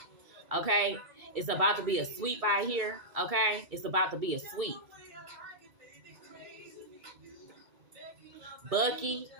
Okay, it's about to be a sweep out here. Okay, it's about to be a sweep. Bucky.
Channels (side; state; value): left; late; 2.3 ms